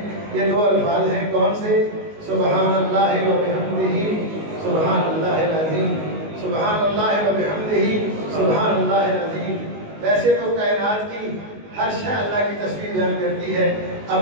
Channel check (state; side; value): late; left; 19 ms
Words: یہ دو الفاظ ہیں کون سے؟ سبحان اللہ و بحمدہ سبحان اللہ العظیم، سبحان اللہ و بحمدہ سبحان اللہ العظیم۔ ویسے تو کائنات کی ہر شے اللہ کی تسبیح بیان کرتی ہے